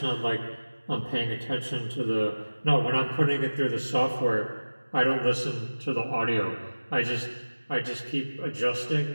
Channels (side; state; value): both; inverted; correlation -1.00